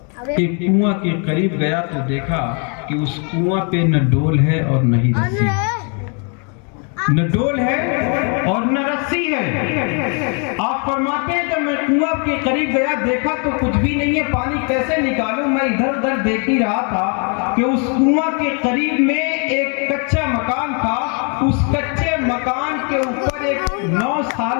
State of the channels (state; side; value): quieter; right; 37.9 dB